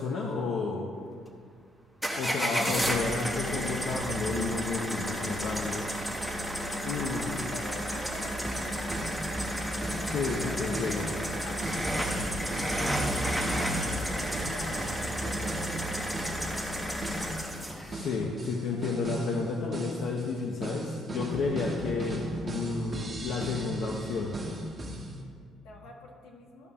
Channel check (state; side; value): normal; both; correlation 0.74